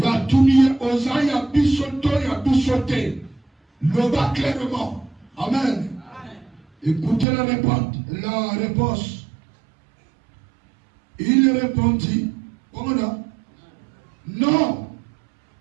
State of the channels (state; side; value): drops out; left; at 7.2 s